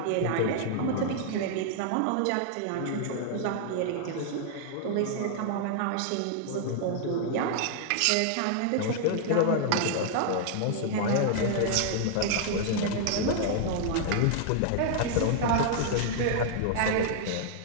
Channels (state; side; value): different; both; correlation -0.01